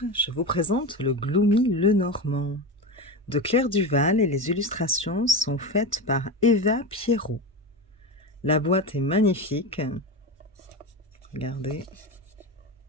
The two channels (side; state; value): both; normal; correlation 0.21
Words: je vous présente le Gloomy Lenormand de Claire Duval et les illustrations sont faites par Eva Pierrot. La boîte est magnifique, regardez,